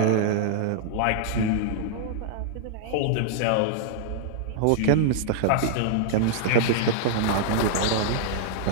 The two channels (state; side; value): different; both; correlation -0.01